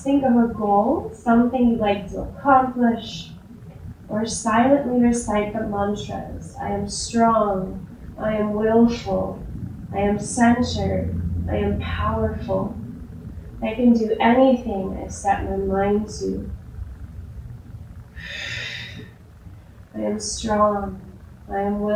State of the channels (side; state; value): both; identical; correlation 1.00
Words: think of a goal, something you'd like to accomplish, or silently recite the mantras. I am strong, I am willful, I am centered, I am powerful. I can do anything I set my mind to. I am strong, I am